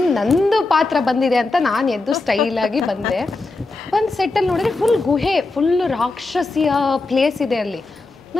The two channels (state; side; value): quieter; right; 3.4 dB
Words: ನಂದು ಪಾತ್ರ ಬಂದಿದೆ ಅಂತ ನಾನು ಎದ್ದು ಸ್ಟೈಲಾಗಿ ಬಂದೆ. ಬಂದು ಸೆಟ್ಟಲ್ಲಿ ನೋಡಿದ್ರೆ ಫುಲ್ ಗುಹೆ, ಫುಲ್ ರಾಕ್ಷಸಿಯ ಪ್ಲೇಸ್ ಇದೆ ಅಲ್ಲಿ.